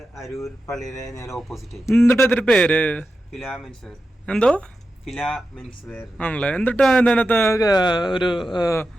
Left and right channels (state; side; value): normal; both; correlation 0.91